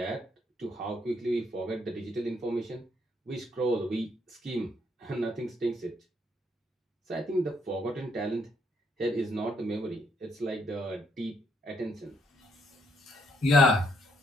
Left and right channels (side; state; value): both; normal; correlation 0.72